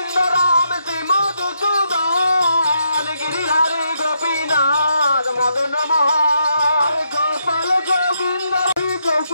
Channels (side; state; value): both; inverted; correlation -0.78